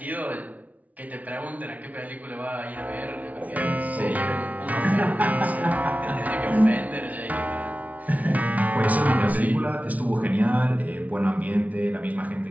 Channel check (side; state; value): left; late; 0.071 ms